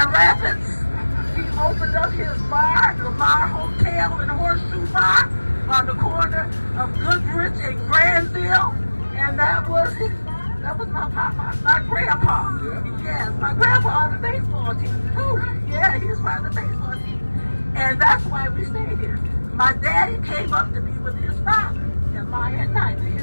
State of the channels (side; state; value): both; inverted; correlation -1.00